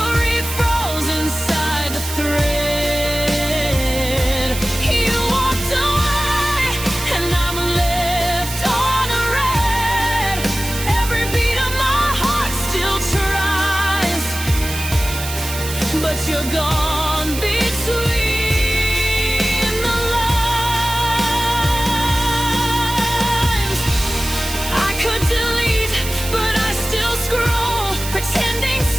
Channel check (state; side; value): noise; right; hiss, 8 dB below the sound